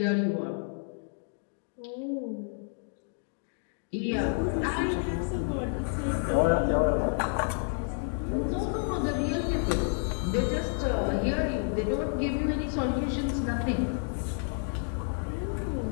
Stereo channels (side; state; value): right; silent; 58 dB below the other